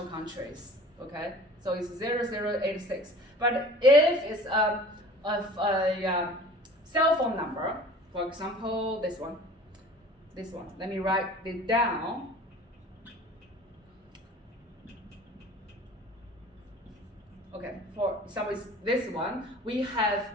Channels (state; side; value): normal; both; correlation 0.44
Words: countries. Okay, so it's 0086. But if it's a cell phone number, for example, this one. Let me write it down. Okay, for example, this one, we have